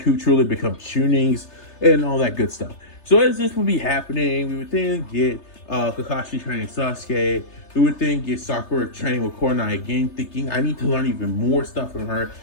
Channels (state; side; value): late; right; 3.3 ms